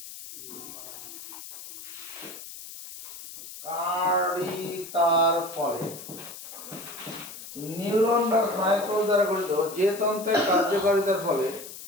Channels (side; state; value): left; noise; hiss, 13 dB below the sound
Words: কার্যকারিতার ফলে নিউরন বা স্নায়ুকোষ দ্বারা গঠিত যে তন্ত্রের কার্যকারিতার ফলে